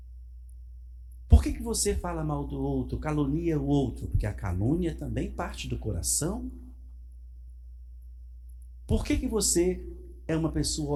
Por que você fala mal do outro, calunia o outro? Porque a calúnia também parte do coração. Por que você é uma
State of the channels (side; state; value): both; identical; correlation 1.00